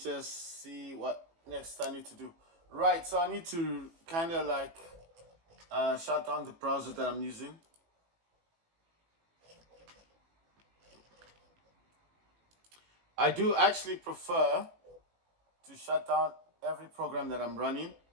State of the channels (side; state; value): left; late; 18 ms